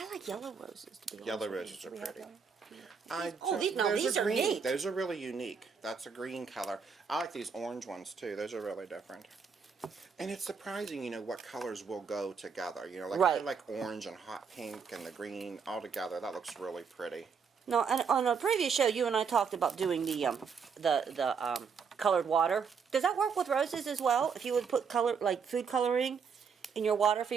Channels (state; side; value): quieter; left; 6.0 dB